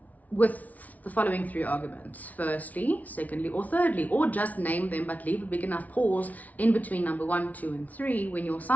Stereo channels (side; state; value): right; late; 0.073 ms